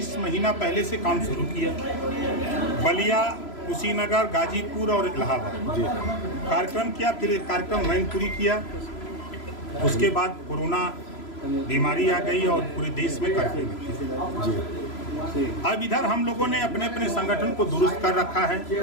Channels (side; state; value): right; late; 3.0 ms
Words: महीना पहले से काम शुरू किया। बलिया, कुशीनगर, गाजीपुर और इलाहाबाद कार्यक्रम किया। फिर एक कार्यक्रम मैनपुरी किया। उसके बाद कोरोना बीमारी आ गई और पूरे देश में कर्फ्यू लग गया। अब इधर हम लोगों ने अपने अपने संगठन को दुरुस्त कर रखा है,